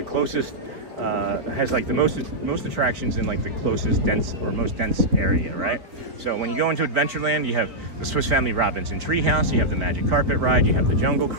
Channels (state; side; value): late; left; 4.2 ms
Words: closest, has like the most attractions in like the closest most dense area, right? So when you go into Adventureland, you have the Swiss Family Robinson Treehouse, you have the Magic Carpet Ride, you have the Jungle